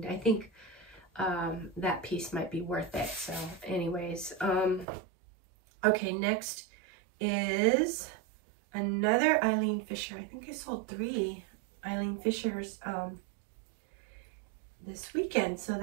I think that piece might be worth it. So anyways, okay, next is another Eileen Fisher. I think I sold 3 Eileen Fishers this weekend, so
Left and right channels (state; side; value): drops out; left; at 4.9 s